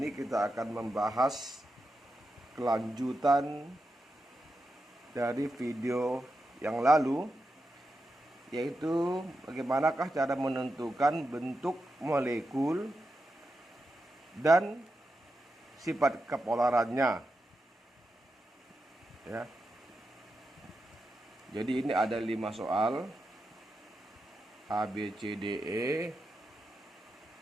kita akan membahas kelanjutan dari video yang lalu, yaitu bagaimanakah cara menentukan bentuk molekul dan sifat kepolarannya, ya. Jadi ini ada 5 soal A, B, C, D, E,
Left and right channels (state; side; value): normal; both; correlation 0.88